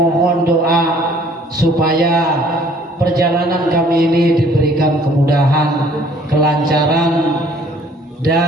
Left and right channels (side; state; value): both; normal; correlation 0.57